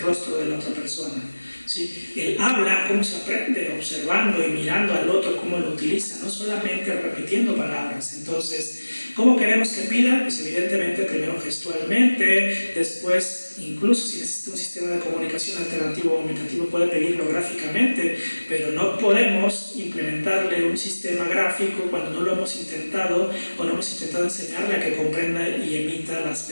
de la otra persona, ¿sí? El habla, cómo se aprende, observando y mirando al otro, cómo lo utiliza, no solamente repitiendo palabras. Entonces, ¿cómo queremos que pida? Pues evidentemente primero gestualmente, después incluso si necesita un sistema de comunicación alternativo o aumentativo puede pedirlo gráficamente, pero no podemos implementarle un sistema gráfico cuando no lo hemos intentado o no hemos intentado enseñarle a que comprenda y emita las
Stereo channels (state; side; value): inverted; both; correlation -1.00